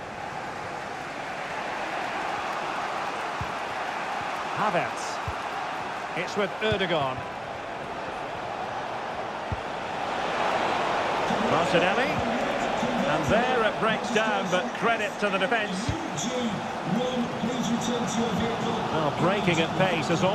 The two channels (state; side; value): identical; both; correlation 1.00